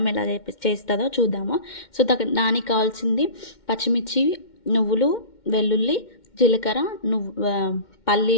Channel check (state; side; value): late; right; 2.1 ms